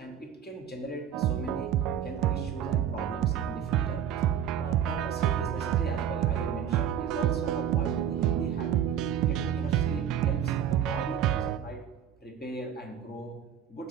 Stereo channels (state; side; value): quieter; left; 9.1 dB